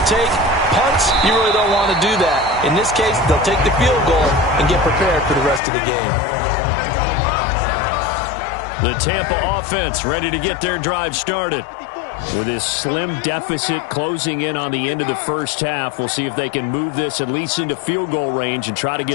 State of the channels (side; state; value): right; drops out; at 5.6 s